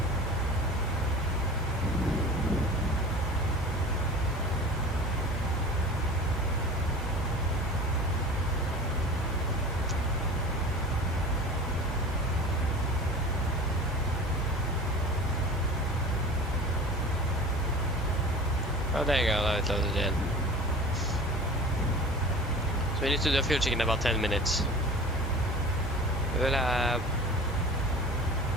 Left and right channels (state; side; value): normal; both; correlation 0.38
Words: Oh, there you go, now it loaded in. So we need to do a fuel check in about 10 minutes. We will have...